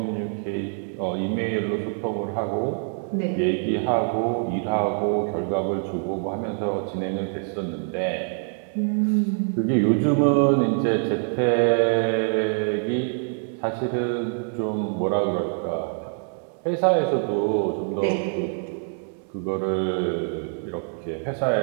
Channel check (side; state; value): left; silent; 62 dB below the other